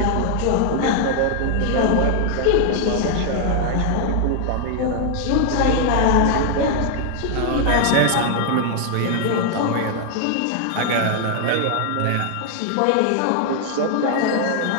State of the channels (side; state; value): both; different; correlation 0.00